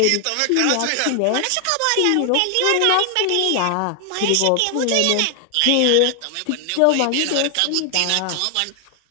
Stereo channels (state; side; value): different; both; correlation 0.00